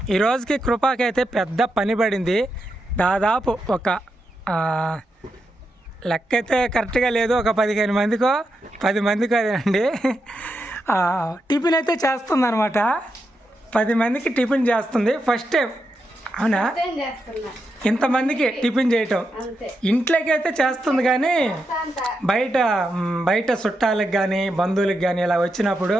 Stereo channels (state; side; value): normal; both; correlation 0.85